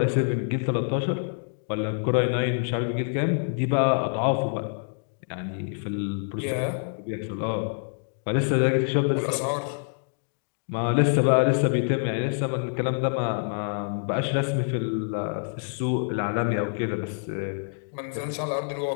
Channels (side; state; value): right; silent; digital silence